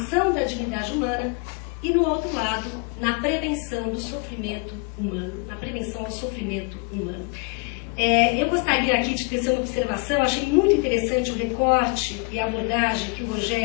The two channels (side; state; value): right; quieter; 33.1 dB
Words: da dignidade humana e, no outro lado, na prevenção do sofrimento humano, na prevenção ao sofrimento humano. Eu gostaria aqui de tecer uma observação. Achei muito interessante o recorte e a abordagem que o